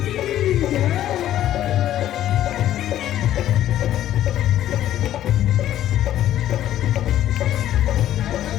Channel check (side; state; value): right; quieter; 12.3 dB